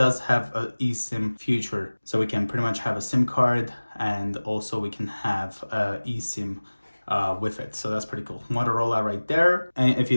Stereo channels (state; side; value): inverted; both; correlation -1.00